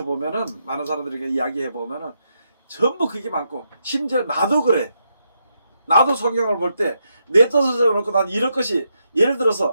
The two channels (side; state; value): both; inverted; correlation -0.81